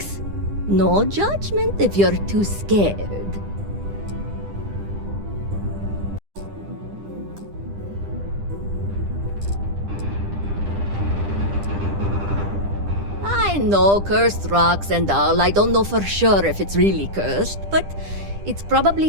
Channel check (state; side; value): late; left; 10 ms